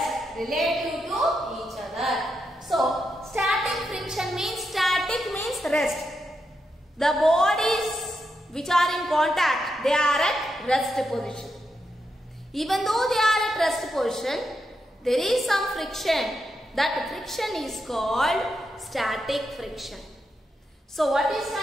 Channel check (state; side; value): normal; both; correlation 0.84